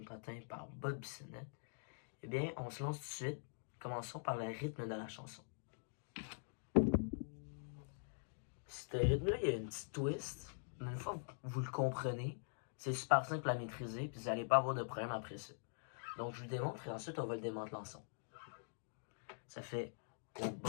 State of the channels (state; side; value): silent; right; digital silence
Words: patins par Bob Bissonnette. Eh bien, on se lance tout de suite. Commençons par le rythme de la chanson. Ce rythme-là, il y a une petite twist, mais une fois que vous le comprenez, c'est super simple à maîtriser, puis vous n'allez pas avoir de problème après ça. Donc, je vous le démontre et ensuite, on va le démanteler ensemble. Ça fait au